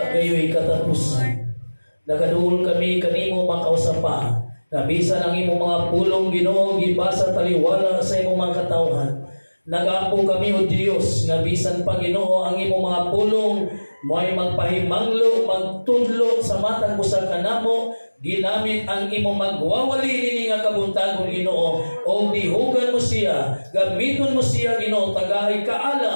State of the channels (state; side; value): inverted; both; correlation -1.00